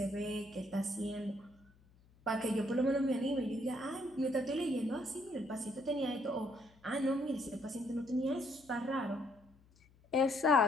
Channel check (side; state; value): left; noise; hum, 29 dB below the sound